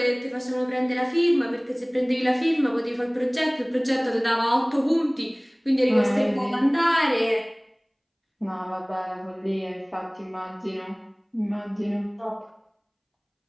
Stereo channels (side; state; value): both; identical; correlation 1.00